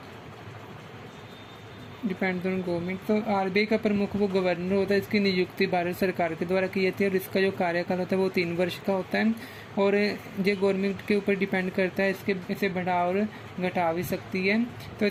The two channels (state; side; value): identical; both; correlation 1.00